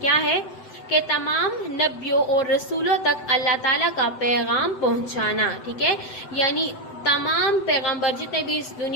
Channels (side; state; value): right; late; 7.9 ms